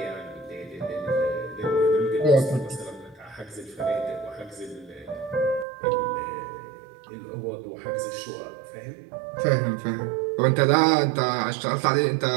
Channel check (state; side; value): drops out; left; at 5.7 s